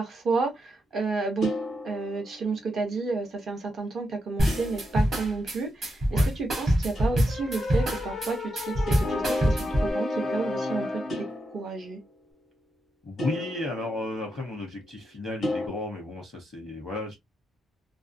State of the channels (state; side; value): normal; both; correlation 0.84